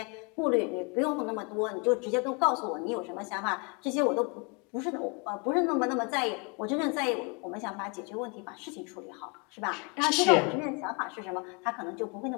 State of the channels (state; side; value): quieter; right; 32.7 dB